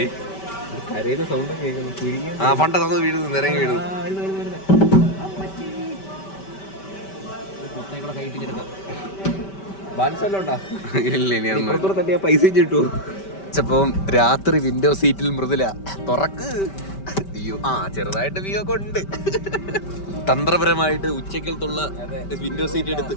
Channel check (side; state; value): right; late; 5.2 ms